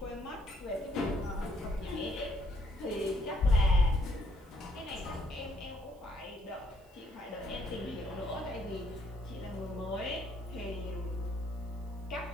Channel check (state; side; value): noise; right; hiss, 30 dB below the sound